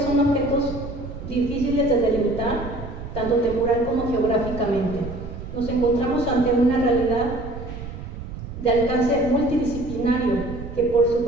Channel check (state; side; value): noise; right; rumble, 10 dB below the sound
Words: son objetos difíciles de delimitar, tanto temporal como geográficamente. Nos encontramos ante una realidad de alcance multidisciplinario que por su